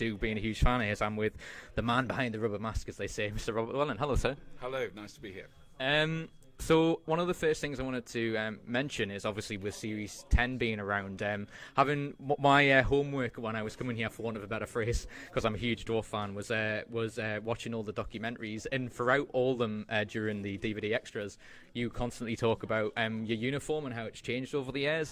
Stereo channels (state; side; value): identical; both; correlation 1.00